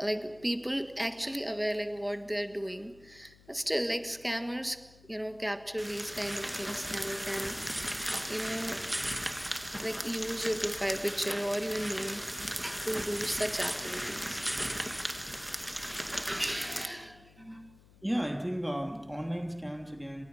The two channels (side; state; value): left; noise; hum, 24 dB below the sound